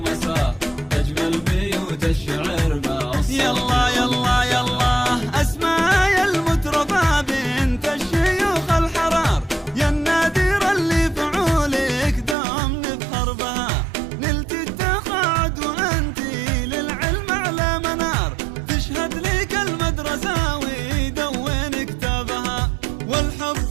تجمل بيوت الشعر باص يلا يلا يلا اسمع يا المترفة بنت الشيوخ الحرار يا النادر اللي فعولك دوم نفخر بها نلت التقاعد وانتي للعلم على منار تشهد لك المدرسة ويدون كتابها والحب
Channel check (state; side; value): drops out; left; at 12.4 s